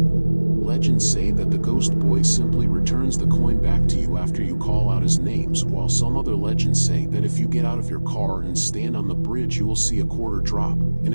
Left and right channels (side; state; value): both; inverted; correlation -1.00